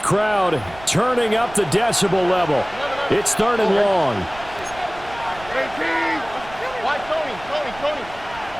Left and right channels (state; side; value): noise; right; rumble, 18 dB below the sound